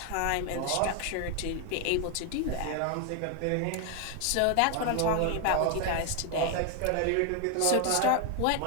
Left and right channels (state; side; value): different; both; correlation 0.01